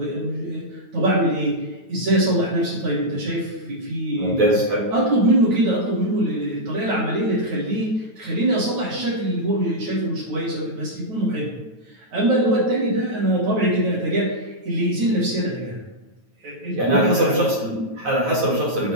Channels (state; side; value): late; left; 9.2 ms